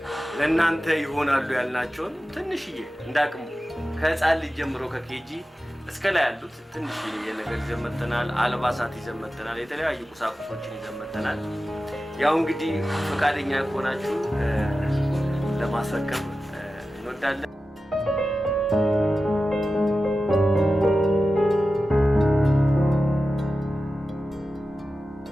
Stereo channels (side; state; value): both; normal; correlation 0.94